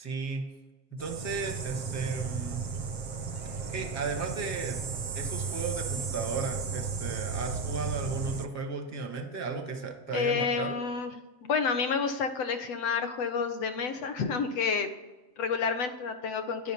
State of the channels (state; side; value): late; right; 7.5 ms